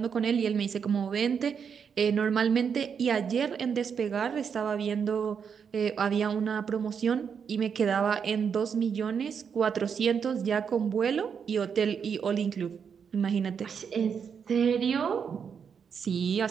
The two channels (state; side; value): quieter; left; 6.8 dB